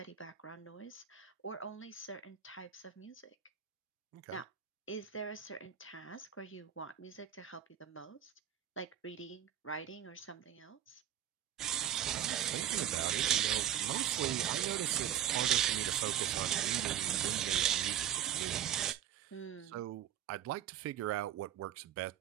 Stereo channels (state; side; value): quieter; left; 10.4 dB